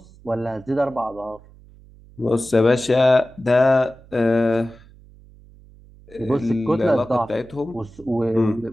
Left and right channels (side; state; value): right; noise; hum, 24 dB below the sound